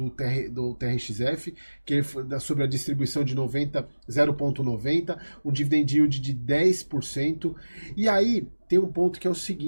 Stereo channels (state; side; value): inverted; both; correlation -1.00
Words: TRXF, que é sobre a distribuição de 0,90, um dividend yield de 10%. E aí tem um ponto que é o